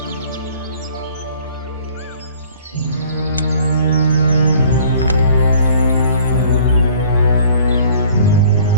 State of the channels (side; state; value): both; inverted; correlation -0.53